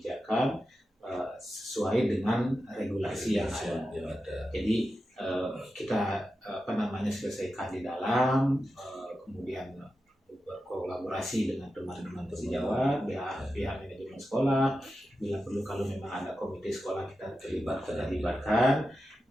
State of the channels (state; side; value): normal; both; correlation 0.91